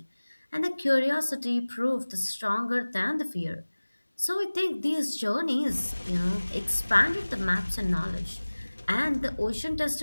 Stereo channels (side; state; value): both; inverted; correlation -1.00